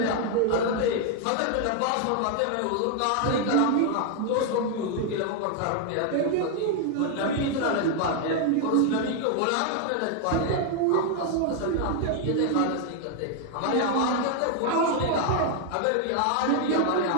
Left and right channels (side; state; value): both; different; correlation 0.00